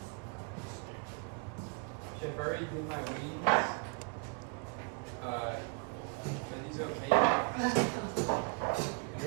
I've already did my wings. Are these okay? You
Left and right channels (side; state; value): left; quieter; 38.0 dB